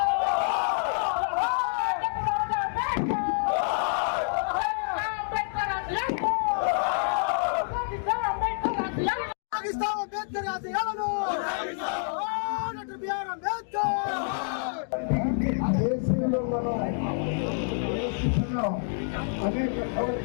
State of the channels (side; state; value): right; silent; digital silence